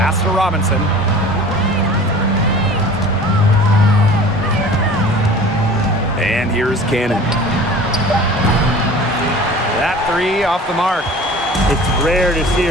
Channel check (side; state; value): both; normal; correlation 0.43